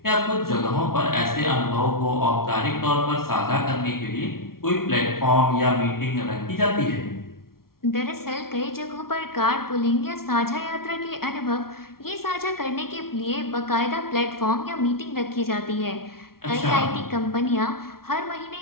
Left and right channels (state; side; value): late; right; 0.93 ms